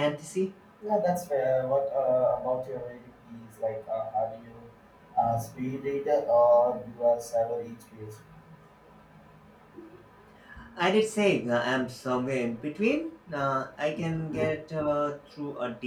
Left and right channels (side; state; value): both; identical; correlation 1.00